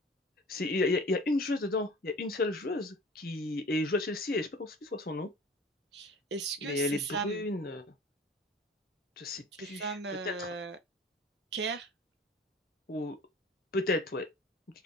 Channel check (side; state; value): both; normal; correlation 0.43